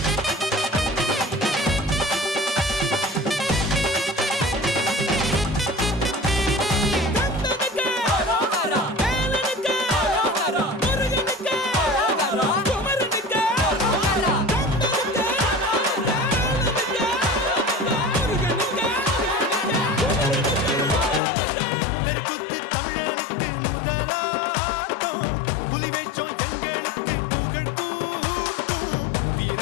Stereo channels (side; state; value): right; drops out; at 21.2 s